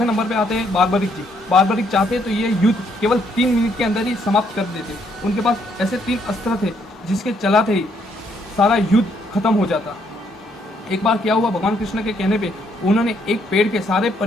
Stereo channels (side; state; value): both; normal; correlation 0.71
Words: नंबर पे आते हैं बार्बरिक जी। बार्बरिक चाहते तो ये युद्ध केवल 3 मिनट के अंदर ही समाप्त कर देते। उनके पास ऐसे 3 अस्त्र थे जिसके चलाते ही सारा युद्ध खत्म हो जाता। एक बार क्या हुआ, भगवान कृष्ण के कहने पे उन्होंने एक पेड़ के सारे